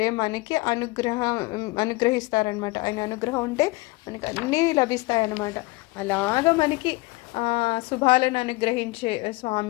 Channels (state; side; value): quieter; right; 22.8 dB